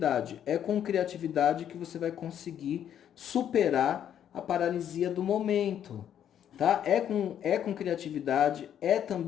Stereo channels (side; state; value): right; quieter; 9.8 dB